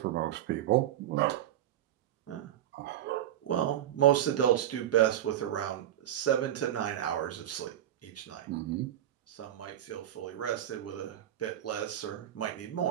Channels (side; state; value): left; quieter; 11.8 dB